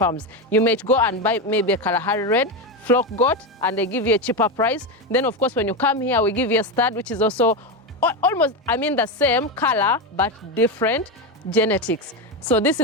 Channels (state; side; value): normal; both; correlation 0.13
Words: you may go and buy maybe a Kalahari Red flock goat, and they give you a cheaper price. Then of course, when you come here, we give you a stud, which is also almost, the same color, but different genetics. So this